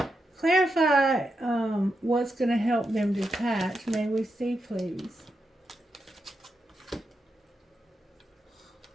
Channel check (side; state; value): both; normal; correlation 0.86